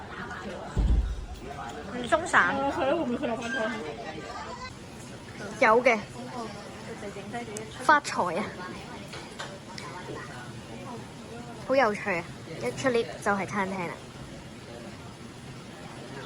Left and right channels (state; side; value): identical; both; correlation 1.00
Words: 唔鬆散。係咯，會唔會佢落翻湯？有嘅。發財啊！好有趣啊！一出 lift 就係餐廳啦。